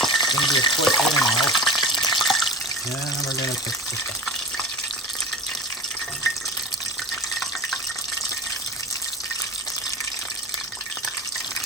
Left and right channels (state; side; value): normal; both; correlation 0.33